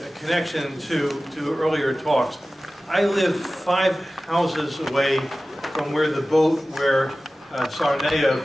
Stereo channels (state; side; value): normal; both; correlation 0.96